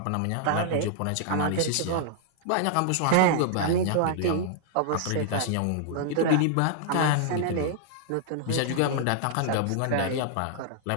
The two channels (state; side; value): different; both; correlation -0.01